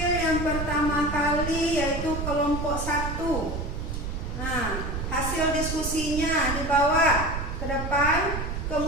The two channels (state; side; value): noise; right; rumble, 4 dB below the sound